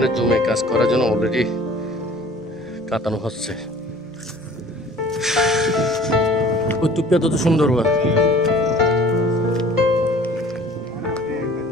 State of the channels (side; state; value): both; normal; correlation 0.48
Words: জুমে কাজ করার জন্য অলরেডি কাটানো হচ্ছে। ওই টুপিটা তো সুন্দর।